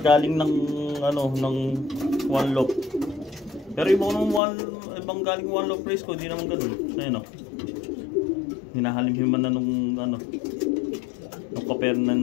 ng one loop. Pero ibang galing one loop race ko, hindi naman ganoon. Ayun hinahalimhiman na nung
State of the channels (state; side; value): drops out; right; at 4.4 s